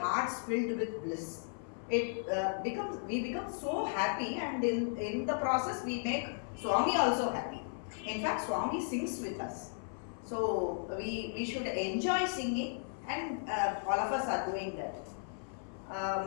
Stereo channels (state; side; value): silent; right; 54 dB below the other